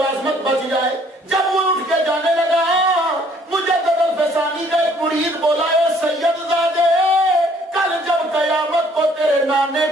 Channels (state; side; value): normal; both; correlation 0.61